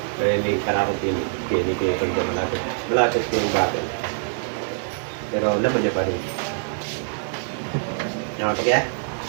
Kaya may karakot yun. Kaya hindi ko yung malapit. Malapit ko yung bakit. Pero laman niya pa rin. Namatok yan?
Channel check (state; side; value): silent; left; digital silence